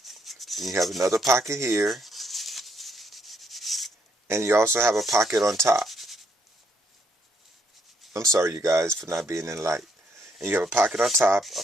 Then you have another pocket here. And you also have a pocket on top. I'm sorry, you guys, for not being in light. And you have a pocket on top, a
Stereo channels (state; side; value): normal; both; correlation 0.72